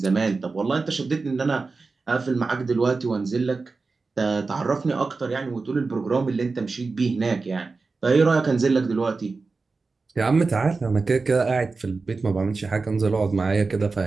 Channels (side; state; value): left; quieter; 4.1 dB